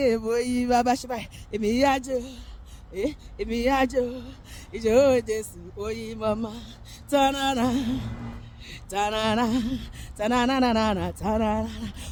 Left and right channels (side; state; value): both; identical; correlation 1.00